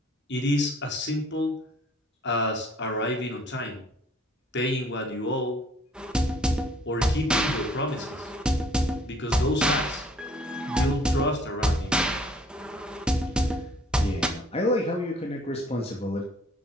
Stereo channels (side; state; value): both; normal; correlation 0.58